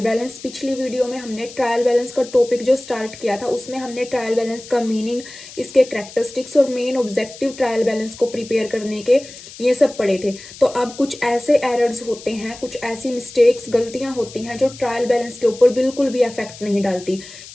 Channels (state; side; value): noise; left; hiss, 17 dB below the sound